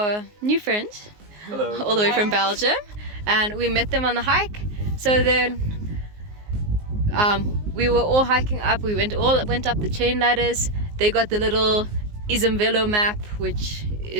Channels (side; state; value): left; late; 19 ms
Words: new friends. Hello. All the way from Belgium, and we met them on the hike. So then we were all hiking up. We went up the chain ladders. They got the little Isumvelo map, which